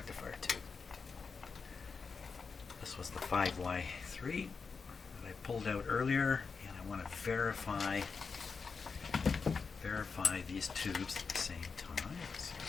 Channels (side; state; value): right; quieter; 5.1 dB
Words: tube. This was the 5Y3 that I pulled out earlier, and I want to verify these tubes at the same time. So